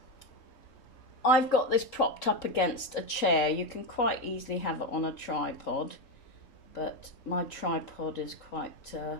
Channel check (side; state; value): right; late; 3.8 ms